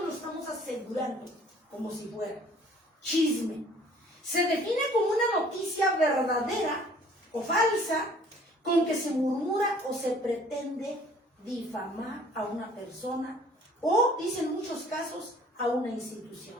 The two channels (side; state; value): both; normal; correlation 0.54